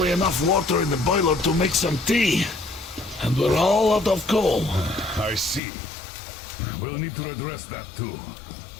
enough water in the boiler to make some tea. And we're all out of coal. I see. We'll need to address that too.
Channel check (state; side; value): drops out; right; at 5.6 s